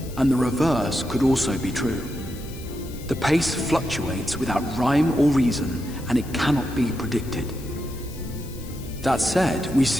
and the reverse could also be true. The pace fluctuates without rhyme or reason, and it cannot be predicted. That said, we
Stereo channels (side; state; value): left; noise; hiss, 18 dB below the sound